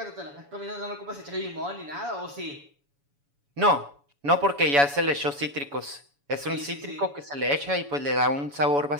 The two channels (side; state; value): left; late; 7.1 ms